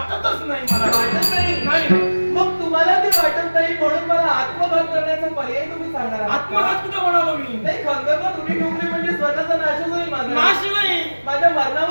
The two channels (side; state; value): both; inverted; correlation -1.00